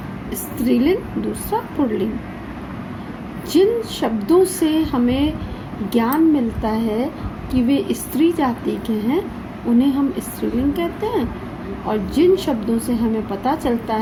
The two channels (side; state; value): both; identical; correlation 1.00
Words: स्त्रीलिंग, दूसरा पुल्लिंग। जिन शब्दों से हमें ज्ञान मिलता है कि वे स्त्री जाति के हैं, उन्हें हम स्त्रीलिंग कहते हैं, और जिन शब्दों से हमें पता चलता